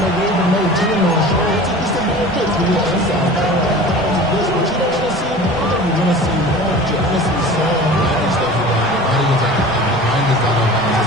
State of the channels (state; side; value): noise; left; rumble, 20 dB below the sound